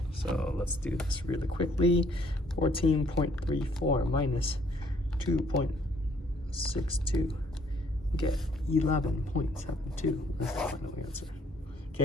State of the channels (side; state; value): both; normal; correlation 0.64